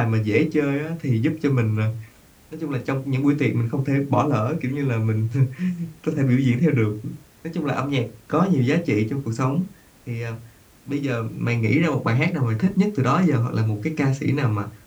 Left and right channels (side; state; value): both; identical; correlation 1.00